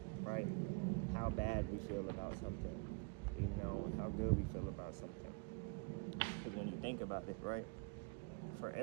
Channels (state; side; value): quieter; left; 31.9 dB